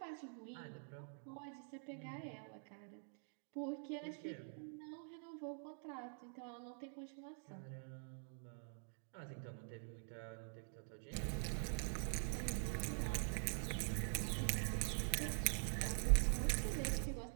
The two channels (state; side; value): silent; left; digital silence